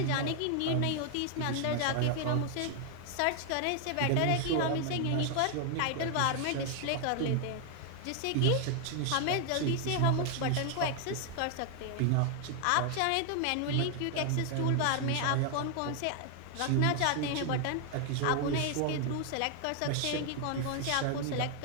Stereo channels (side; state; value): both; different; correlation 0.00